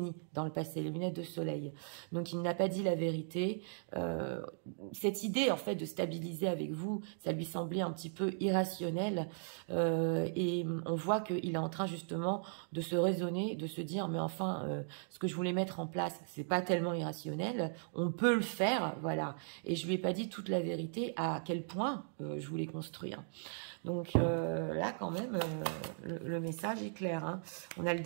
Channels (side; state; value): left; silent; digital silence